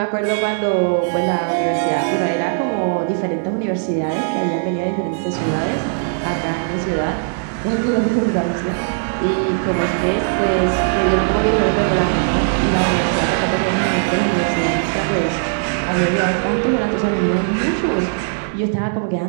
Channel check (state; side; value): silent; left; digital silence